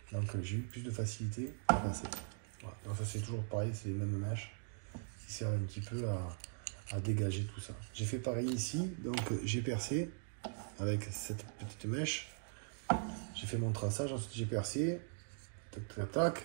Donc j'ai eu plus de facilité à passer. Voilà. Donc ça c'est toujours pareil, c'est les mêmes mèches qui servent un petit peu à dégager tout ça. J'ai fait pareil ici, donc j'ai percé avec cette petite mèche. J'ai fait mon traçage, ensuite j'ai percé. Tac, tac.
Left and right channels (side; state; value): left; silent; digital silence